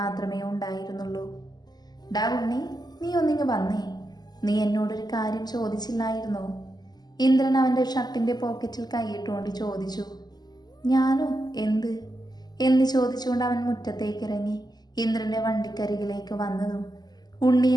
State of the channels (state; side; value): late; right; 0.20 ms